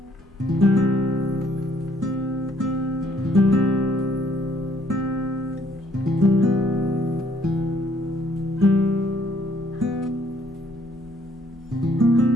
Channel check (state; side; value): normal; both; correlation 0.65